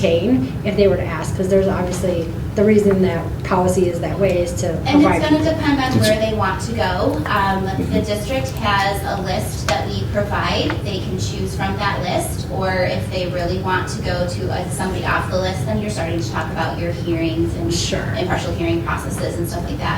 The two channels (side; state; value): both; identical; correlation 1.00